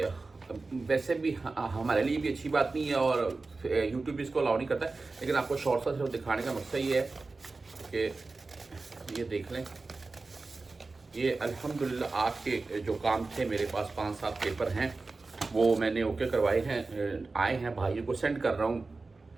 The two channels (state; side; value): quieter; left; 3.7 dB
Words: वैसे भी हमारे लिए भी अच्छी बात नहीं है और यूट्यूब भी इसको अलाउ नहीं करता है, लेकिन आपको शॉर्ट सा सिर्फ दिखाने का मकसद ये है कि ये देख लें। ये अल्हम्दुलिल्लाह आपके जो काम थे, मेरे पास 5-7 पेपर हैं, वो मैंने ओके करवाए हैं, आए हैं, भाइयों को सेंड कर रहा हूँ।